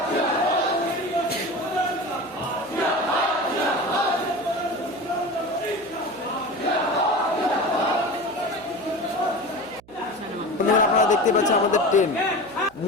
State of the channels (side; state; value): right; noise; hum, 26 dB below the sound